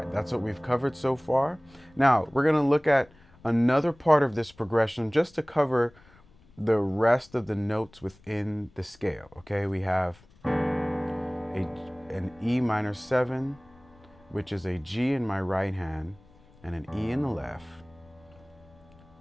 that's what we've covered so far. Now, we're gonna look at another part of this progression just to cover the rest of the notes within the scale. Okay, we have an E minor 7, which is a G in my right hand and an E in the left,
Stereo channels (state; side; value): noise; left; rumble, 28 dB below the sound